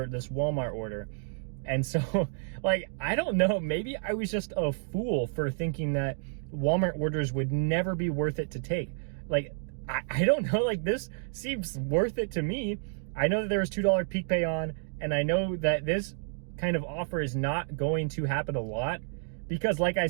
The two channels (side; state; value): left; silent; digital silence